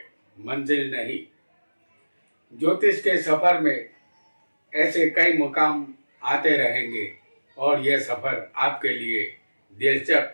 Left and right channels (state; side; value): inverted; both; correlation -1.00